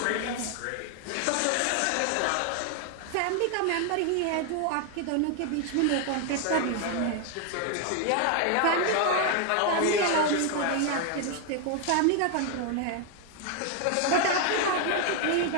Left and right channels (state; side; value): different; both; correlation 0.00